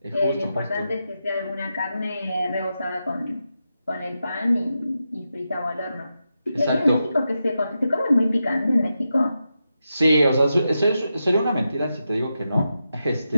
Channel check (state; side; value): inverted; both; correlation -0.88